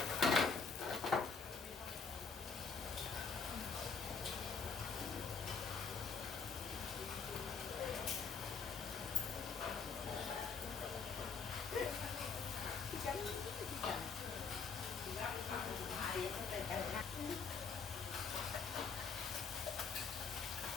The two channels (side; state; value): right; quieter; 5.4 dB